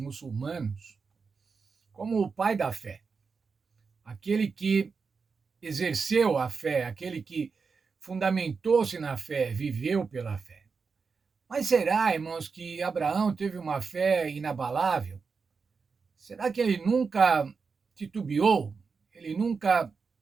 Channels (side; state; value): left; quieter; 5.1 dB